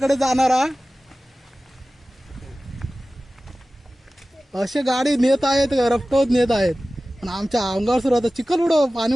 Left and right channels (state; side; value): normal; both; correlation 0.96